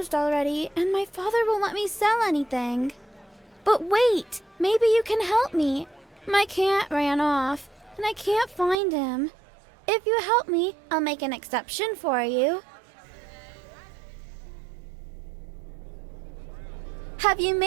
already, and my father won't let me sell anything. But wait, maybe you can help me. My cat ran off, and I can't find him. If you help me, I'll make an exception for you. Have you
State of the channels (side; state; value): left; drops out; at 8.8 s